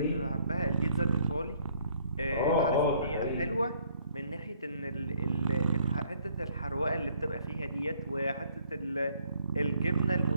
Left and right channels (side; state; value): both; inverted; correlation -0.63